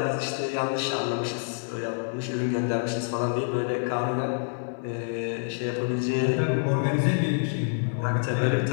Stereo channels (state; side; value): silent; right; digital silence